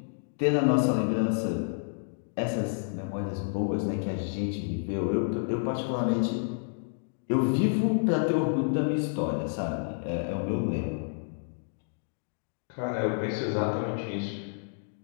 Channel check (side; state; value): right; silent; digital silence